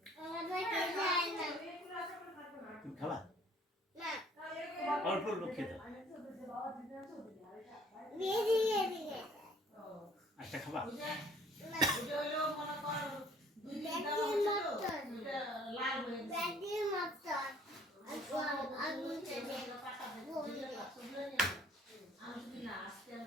তুমি খাবা অল্প অল্প খেতে একটা খাবা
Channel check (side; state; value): both; normal; correlation 0.57